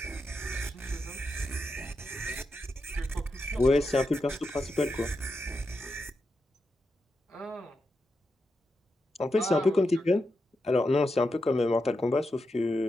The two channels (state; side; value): normal; both; correlation 0.87